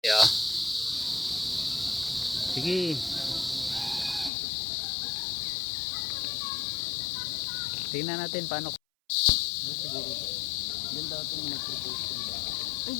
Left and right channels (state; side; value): drops out; right; at 4.3 s